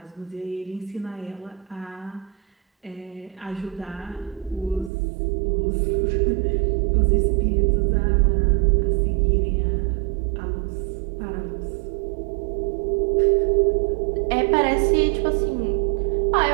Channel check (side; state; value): left; drops out; at 4.9 s